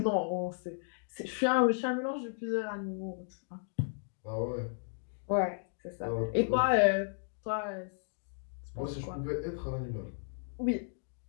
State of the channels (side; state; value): right; silent; digital silence